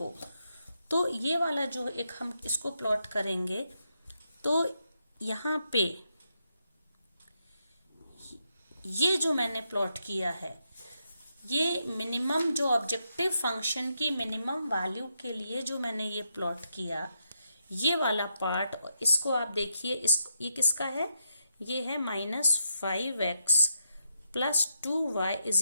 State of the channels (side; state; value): both; inverted; correlation -0.82